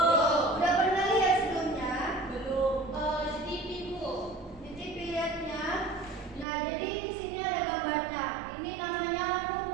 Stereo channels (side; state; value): left; drops out; at 6.5 s